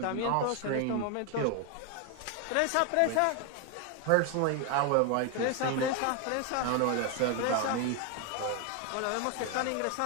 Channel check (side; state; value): both; different; correlation 0.01